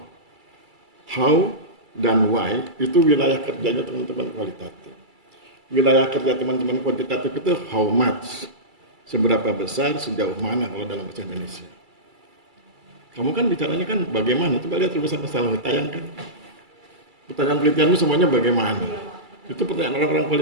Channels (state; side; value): late; left; 2.3 ms